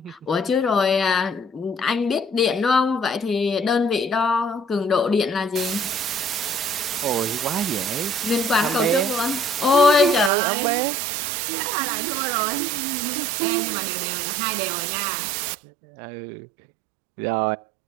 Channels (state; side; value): drops out; left; at 10.3 s